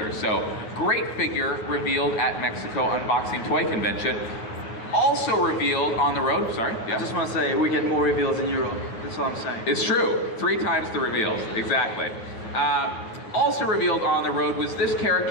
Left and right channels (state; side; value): late; right; 9.2 ms